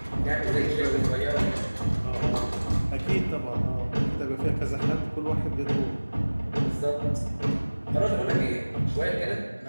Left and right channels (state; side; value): inverted; both; correlation -1.00